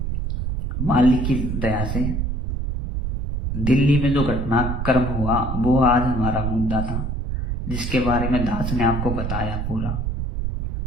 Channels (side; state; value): right; noise; rumble, 2 dB below the sound